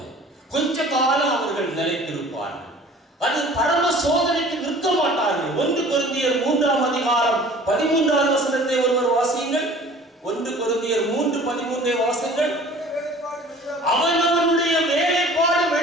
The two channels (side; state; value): both; normal; correlation 0.47